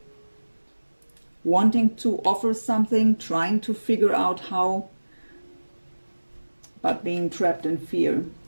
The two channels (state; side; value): inverted; both; correlation -1.00